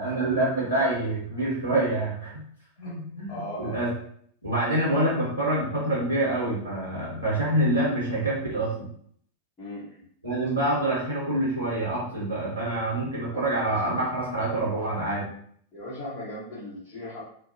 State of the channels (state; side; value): normal; both; correlation -0.16